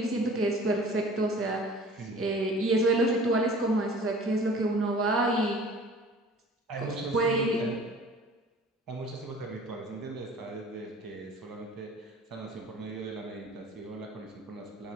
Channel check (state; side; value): normal; both; correlation 0.46